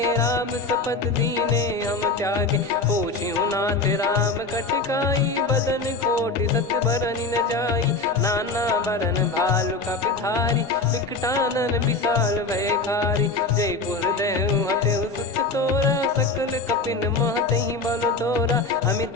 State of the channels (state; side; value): quieter; right; 3.6 dB